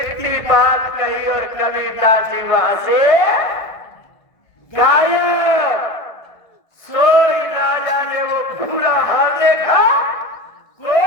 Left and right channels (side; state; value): right; late; 1.5 ms